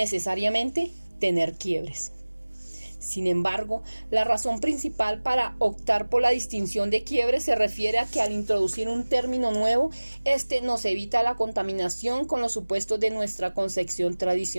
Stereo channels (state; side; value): inverted; both; correlation -1.00